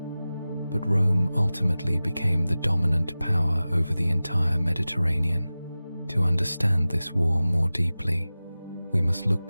but Rome ultimately became the dominant power over the entire Mediterranean. To understand this war more deeply, we must look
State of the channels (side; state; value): both; inverted; correlation -0.97